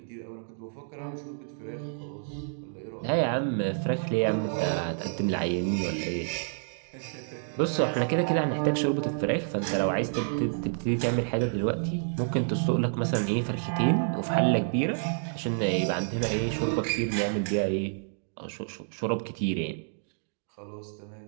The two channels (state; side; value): silent; left; digital silence